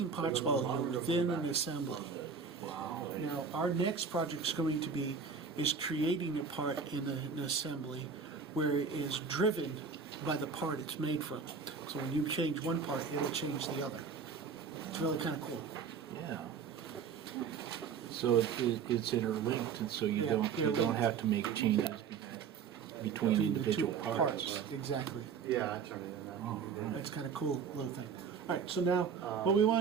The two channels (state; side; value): quieter; left; 6.1 dB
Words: parts while you're within an assembly. Now, our next project is going to be creating a part in an assembly where it is driven by the part it's made from. So when you change one part, it'll change the other. It's really kind of cool. Yeah. So it's interlinked, and so you don't linked. have to make changes between Between the two individual parts. Exactly. Yeah, I turned it in. Oh, right. That's kind of cool little thing. All right, so now what we